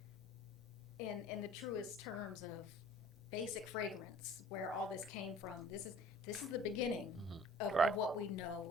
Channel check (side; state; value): both; normal; correlation 0.49